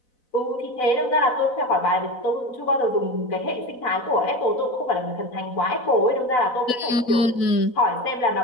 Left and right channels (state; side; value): late; right; 4.0 ms